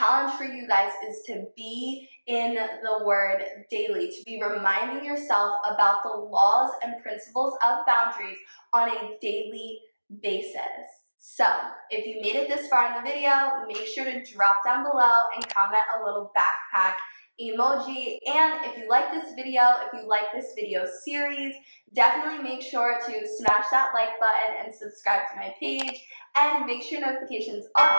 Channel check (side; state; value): both; inverted; correlation -1.00